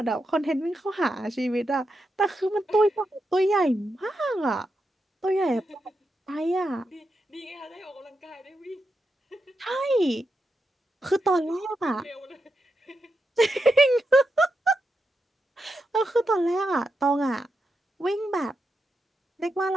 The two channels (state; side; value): normal; both; correlation 0.86